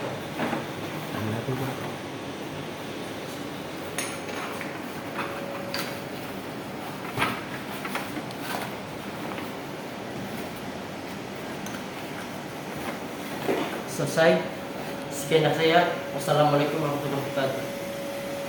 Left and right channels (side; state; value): both; identical; correlation 1.00